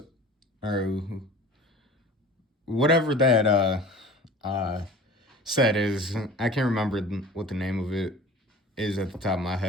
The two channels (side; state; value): both; normal; correlation 0.41